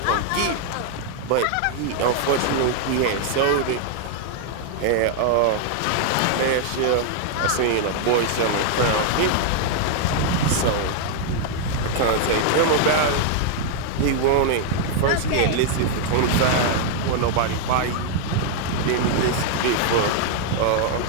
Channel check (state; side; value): different; both; correlation 0.00